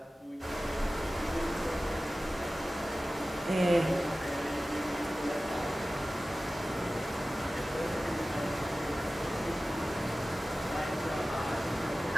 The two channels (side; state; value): both; normal; correlation 0.96